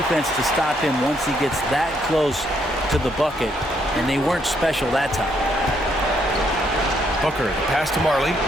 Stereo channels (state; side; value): normal; both; correlation 0.72